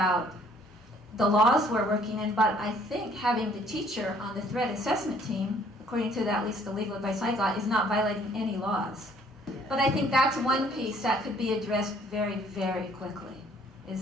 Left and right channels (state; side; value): normal; both; correlation 0.61